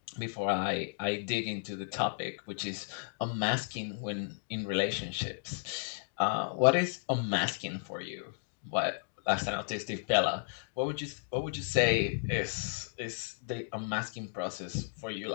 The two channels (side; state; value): right; silent; digital silence